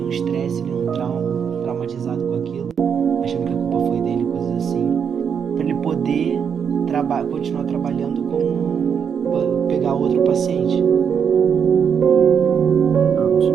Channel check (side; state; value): left; quieter; 7.3 dB